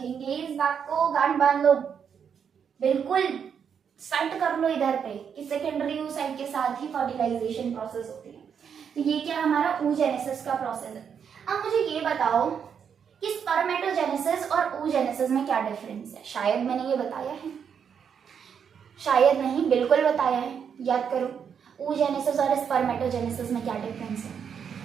इस बात को, गांठ बांध लो, बिल्कुल सेट कर लो इधर पे कि सेकेंडरी oocyte के साथ ही फर्टिलाइजेशन प्रोसेस होती है। तो ये क्या हमारा oogenesis का प्रोसेस है। अब मुझे ये बताओ कि स्पर्मेटोजेनेसिस और oogenesis में क्या डिफरेंस है। शायद मैंने ये बताया है, शायद नहीं, बिल्कुल बताया है, याद करो। oogenesis और स्पर्मेटोजेनेसिस में क्या डिफरेंस है।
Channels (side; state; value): left; quieter; 7.4 dB